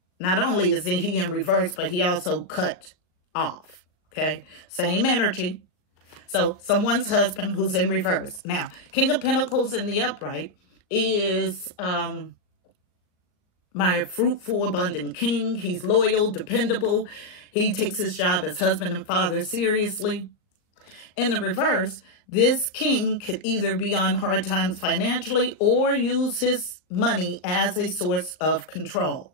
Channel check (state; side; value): late; right; 38 ms